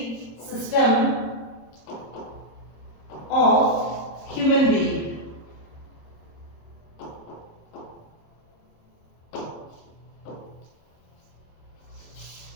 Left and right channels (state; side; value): late; right; 26 ms